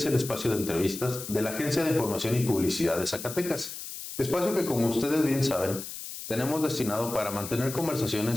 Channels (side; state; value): left; noise; hiss, 9 dB below the sound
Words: el espacio de entrevistas de la Agencia de Información y Publicidad de Zacatecas. Espacio que, como ustedes bien saben, tenemos destinado para mantener